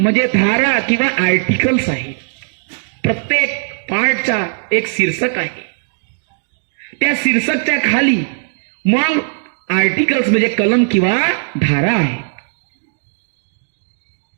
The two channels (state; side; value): silent; left; digital silence